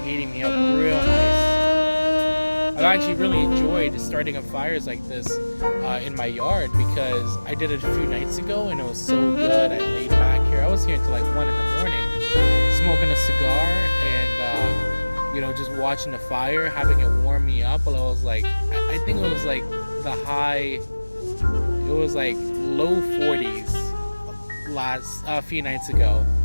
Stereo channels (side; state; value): both; inverted; correlation -1.00